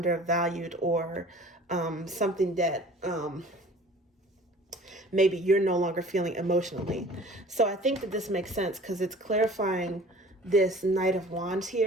or something that maybe you're no longer feeling emotionally. So I think that this makes sense because it's clarifying this Knight of Wands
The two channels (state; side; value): normal; both; correlation 0.47